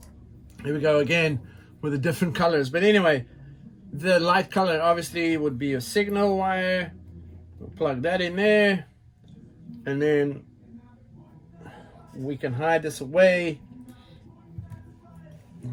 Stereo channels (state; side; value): identical; both; correlation 1.00